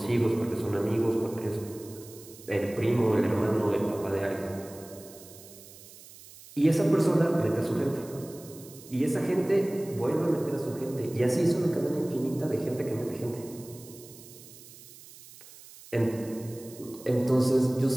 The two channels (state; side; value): noise; right; hiss, 19 dB below the sound